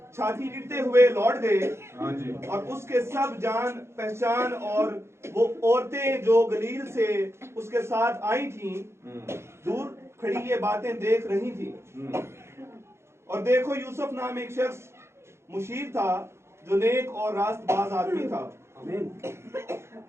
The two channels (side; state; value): left; late; 0.13 ms